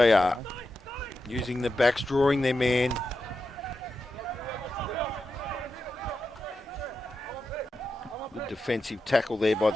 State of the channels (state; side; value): normal; both; correlation 0.89